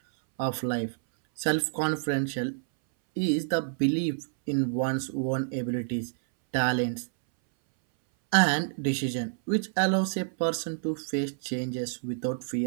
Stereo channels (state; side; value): silent; left; 59 dB below the other